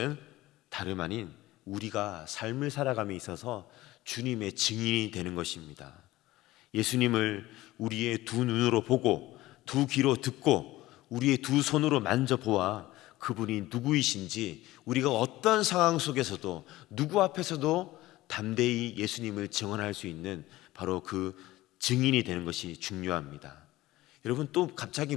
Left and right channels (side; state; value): right; quieter; 17.3 dB